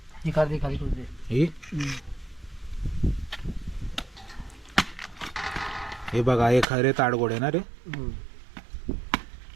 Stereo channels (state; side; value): drops out; left; at 6.7 s